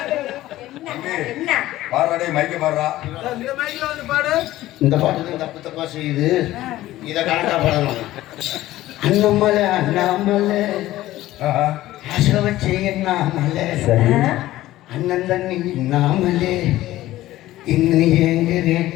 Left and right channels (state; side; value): quieter; right; 15.6 dB